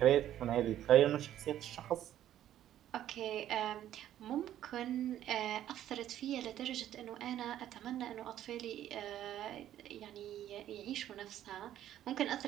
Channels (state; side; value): quieter; left; 11.9 dB